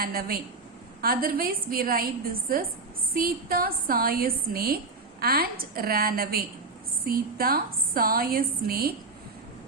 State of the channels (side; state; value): left; quieter; 3.8 dB